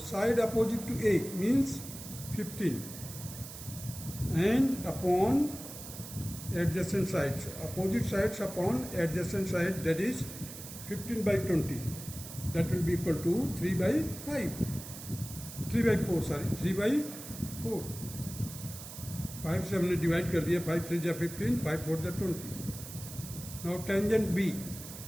opposite to A means 15 and upon adjacent sides, opposite sides upon adjacent side, that is 15 by 20, that will be equal to 3 by 5, 3 by 4, sorry, 3 by 4. 5 से हमने divide कर दिया, 5 3 जा 15, 5 4 जा 20. Now tangent B.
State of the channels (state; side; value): noise; right; hiss, 12 dB below the sound